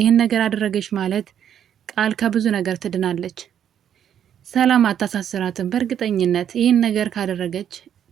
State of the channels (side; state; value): left; quieter; 9.4 dB